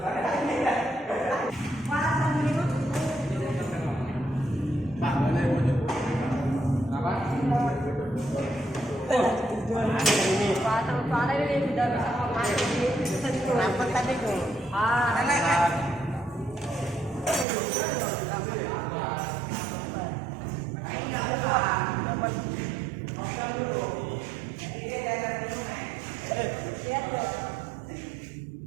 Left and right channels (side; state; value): left; drops out; at 17.4 s